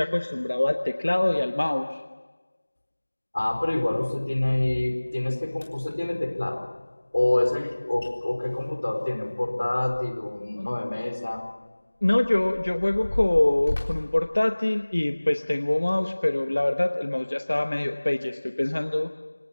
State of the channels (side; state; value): both; inverted; correlation -1.00